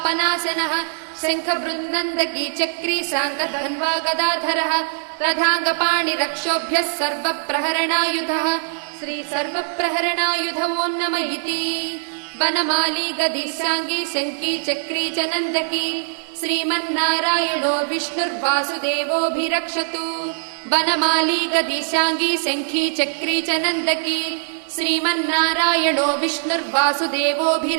शङ्खबृन्नन्दकी चक्री शाङ्कधन्वा गदाधरः रथाङ्गपाणिरक्षोभ्यः सर्वप्रहरणायुधः श्री सर्वप्रहरणायुधवो नम इति वनमाली गदीशाङ्गी शङ्की चक्री च नन्दकी श्रीमन्नारायणो विष्णुर्वासुदेवोऽभिरक्षतु वनमाली गदीशाङ्गी शङ्खी चक्री च नन्दकी श्रीमन्नारायणो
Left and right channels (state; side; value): silent; left; digital silence